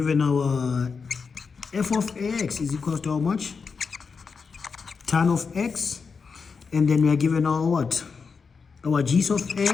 our f of x is equals to how much? Tan of x. And then we are given our what? Our g's of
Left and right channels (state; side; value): quieter; right; 5.3 dB